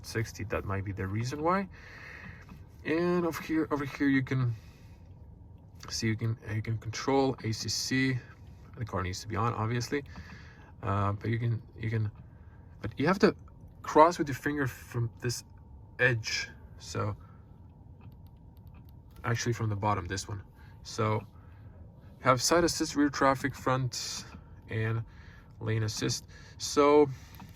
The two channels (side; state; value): both; identical; correlation 1.00